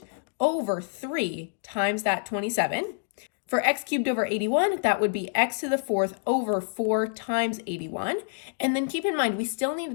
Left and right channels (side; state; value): right; silent; digital silence